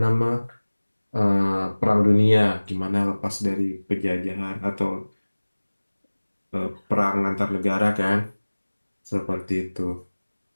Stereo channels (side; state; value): both; inverted; correlation -1.00